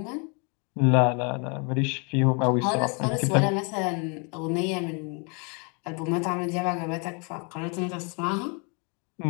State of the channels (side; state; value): right; quieter; 34.6 dB